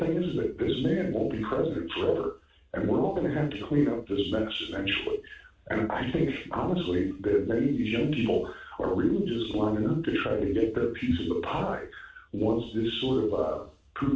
is that this man won't be president forever, and we're all going to have to clean up this mess eventually. And I think, honestly, that many of these young people are really just lining up to try to get their piece of the pie once this sort of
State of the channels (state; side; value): identical; both; correlation 1.00